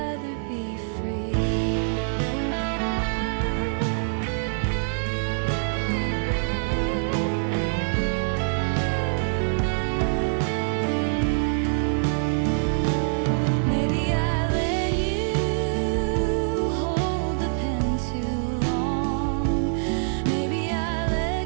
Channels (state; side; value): silent; left; digital silence